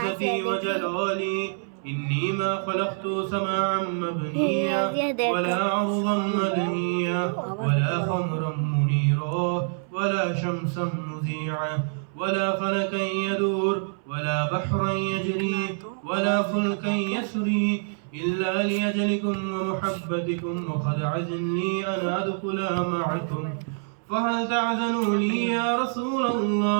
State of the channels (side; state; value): left; silent; 60 dB below the other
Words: وجلالي إني ما خلقت سماعا مبنيا ولا عرضا مدنيا ولا خمرا منيرا ولا شمسا مذيعا ولا فلكا يدور ولا بحرا يجري ولا فلكا يسري إلا لأجلكم ومحبتكم وقد عزن لي أن أدخل معكم فهل تعذنوا لي يا رسول